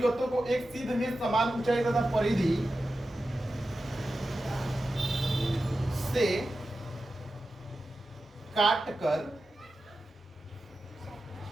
को एक सीध में समान ऊंचाई तथा परिधि से काटकर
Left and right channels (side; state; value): both; normal; correlation 0.92